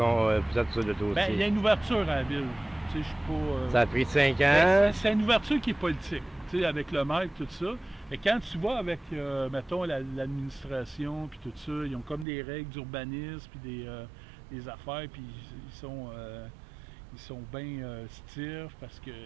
sur le dossier. Bien, il y a une ouverture à la ville. Tu sais, je suis pas, ça a pris 5 ans. C'est une ouverture qui est politique, tu sais, avec le maire et tout ça. Et quand tu vas avec, mettons, l'administration puis tout ça, ils ont comme des règles d'urbanisme puis des affaires, puis ils sont bien stiffs parce qu'ils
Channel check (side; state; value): left; drops out; at 12.2 s